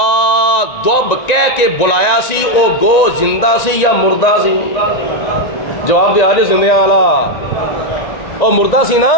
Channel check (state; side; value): late; right; 1.9 ms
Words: دب کہہ کے بلایا سی او گو زندہ سی یا مردہ سی؟ جواب دے آجے زندیاں والا او مردہ سی نا.